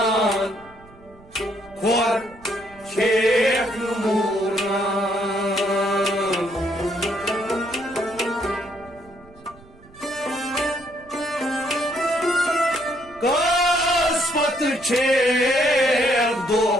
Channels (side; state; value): right; noise; rumble, 24 dB below the sound